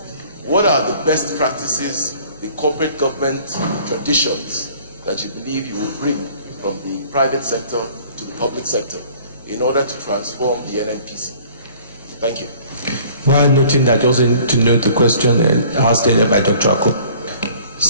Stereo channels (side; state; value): both; inverted; correlation -0.52